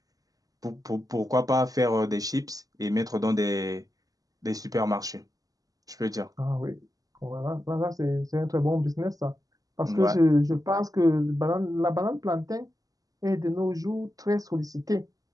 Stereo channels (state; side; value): late; left; 0.17 ms